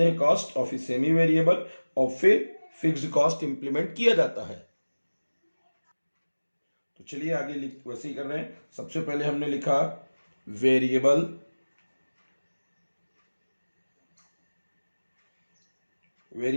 हैं कॉस्ट, और फिर सेमी वेरिएबल, और फिर फिक्स्ड कॉस्ट इंप्लीमेंट किया जाता है। तो चलिए आगे वैसे ही कर रहे हैं। सबसे पहले हमने लिखा वेरिएबल,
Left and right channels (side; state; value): both; inverted; correlation -1.00